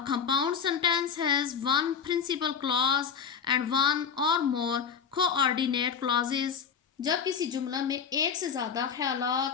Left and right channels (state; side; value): quieter; right; 6.7 dB